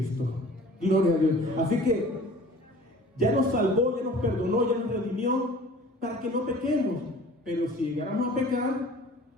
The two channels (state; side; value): normal; both; correlation 0.46